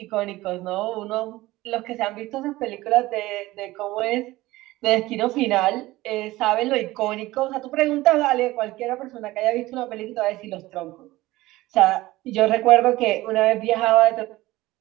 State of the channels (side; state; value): left; quieter; 18.3 dB